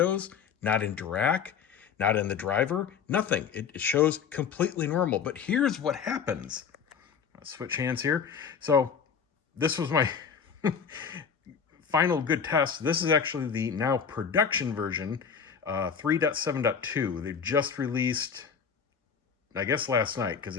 not in Dirac, not in the driver, nothing. It shows completely normal. But here's what happens. I'll switch hands here. So this was my final good test. This is actually the now production version, 3.7.2. They've just released, I guess last night, because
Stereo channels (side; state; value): right; quieter; 6.7 dB